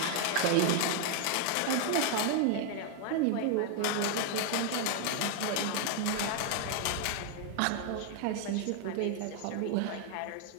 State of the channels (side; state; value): both; different; correlation 0.00